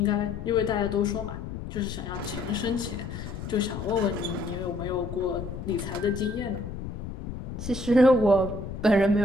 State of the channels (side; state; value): left; noise; rumble, 8 dB below the sound